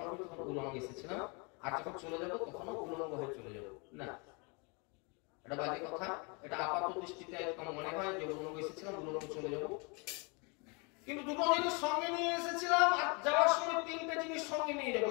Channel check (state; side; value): quieter; right; 31.8 dB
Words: করি তখন উলঙ্গ এসেছিলাম, আর যখন চলে যাব তখনও উলঙ্গ হয়ে চলে যাব। না, এটা বাজে কথা। এটা আপাত দৃষ্টিতে একদম মনে হয় যে উলঙ্গ এসেছিলাম, উলঙ্গ চলে যাব। কিন্তু 2টো জিনিস সঙ্গে নিয়ে এসেছিলাম, আর যাওয়ার সময় 3টে জিনিস সঙ্গে নিয়ে যাবো।